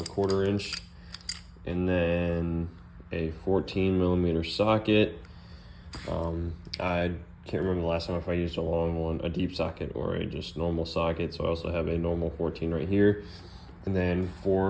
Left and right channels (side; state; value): both; identical; correlation 1.00